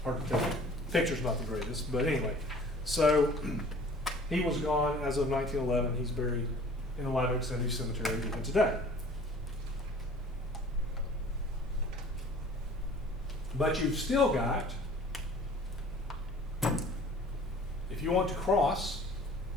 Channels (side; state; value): both; normal; correlation 0.49